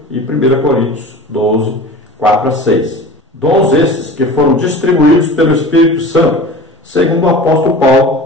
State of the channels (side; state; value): both; normal; correlation 0.37